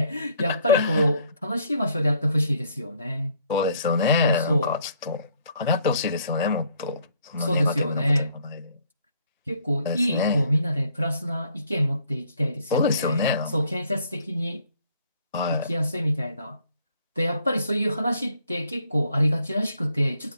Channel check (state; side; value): inverted; both; correlation -0.64